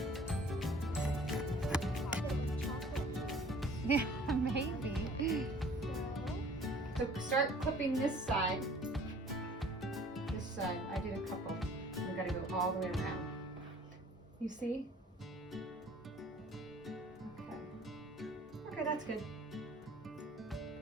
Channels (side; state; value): both; normal; correlation 0.52